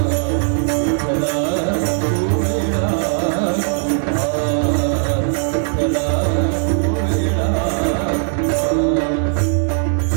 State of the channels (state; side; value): silent; left; digital silence